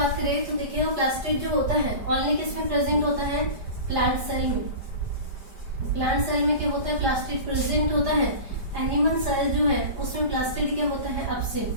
करें तो देखिएगा प्लास्टिड जो होता है ओनली किसमें प्रेजेंट होता है, प्लांट सेल में। प्लांट सेल में क्या होता है, प्लास्टिड प्रेजेंट होता है। एनिमल सेल जो है उसमें प्लास्टिड क्या होता है, एब्सेंट।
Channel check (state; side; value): late; left; 5.1 ms